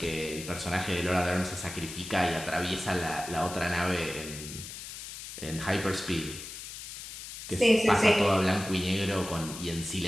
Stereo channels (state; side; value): noise; left; hiss, 10 dB below the sound